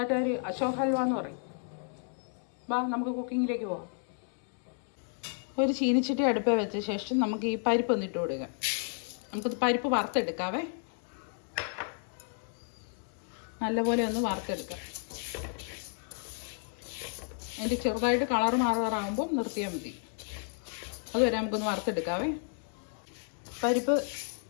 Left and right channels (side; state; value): right; silent; 56 dB below the other